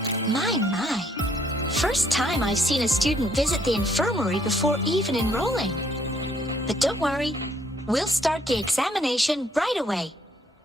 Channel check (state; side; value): normal; both; correlation 0.67